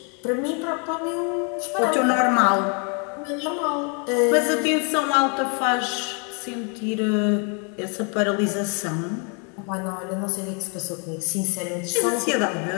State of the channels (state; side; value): quieter; right; 37.3 dB